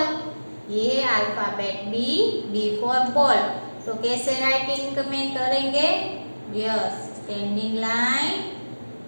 ये है अल्फाबेट बी फॉर बॉल. तो कैसे राइटिंग में करेंगे? Yes, standing line,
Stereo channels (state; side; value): inverted; both; correlation -1.00